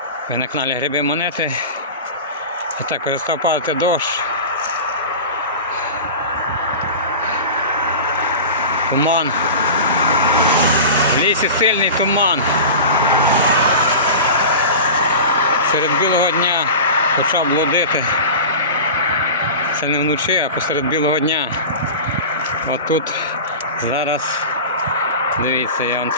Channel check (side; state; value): both; inverted; correlation -0.31